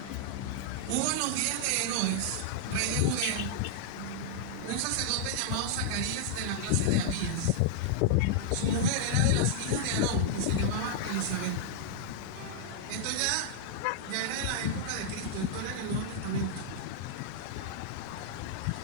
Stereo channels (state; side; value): different; both; correlation -0.01